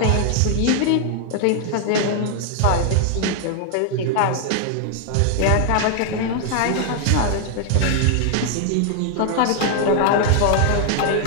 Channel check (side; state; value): both; different; correlation 0.00